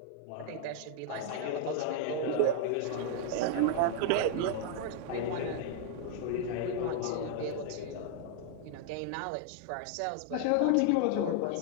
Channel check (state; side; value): different; both; correlation 0.00